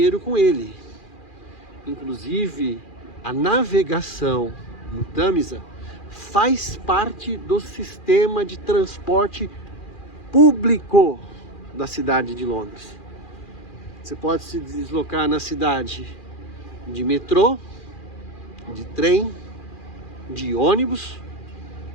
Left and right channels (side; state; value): right; late; 2.4 ms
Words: com ele. Inclusive, a navegação no Tâmisa faz parte do sistema de transporte público da cidade de Londres. Você pode se deslocar na cidade de metrô, de trem, de ônibus